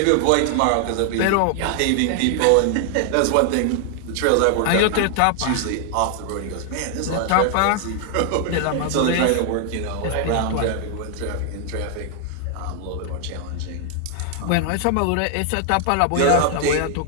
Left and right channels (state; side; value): different; both; correlation 0.00